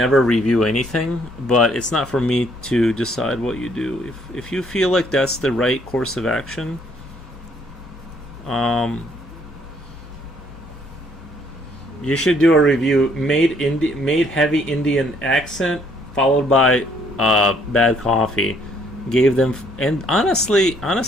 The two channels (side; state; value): both; normal; correlation 0.66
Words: review anything, but it's not for me to decide what you do. If you feel like that's the right course of action, you should do a review. Made heavy Indian accent, followed by bad coffee. Gave them, and honestly